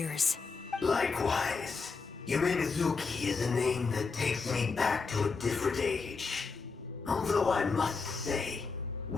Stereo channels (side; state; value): right; quieter; 4.7 dB